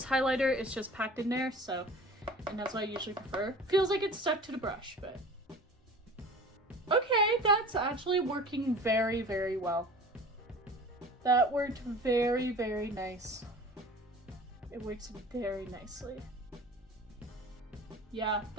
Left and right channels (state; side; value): normal; both; correlation 0.41